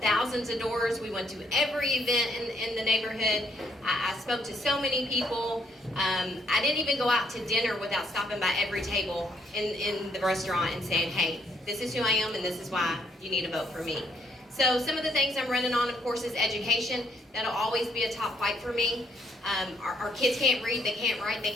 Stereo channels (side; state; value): both; normal; correlation 0.70